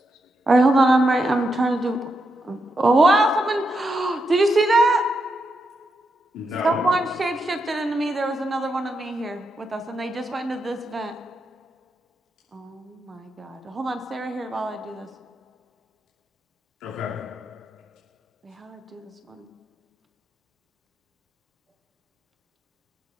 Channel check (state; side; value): normal; both; correlation 0.84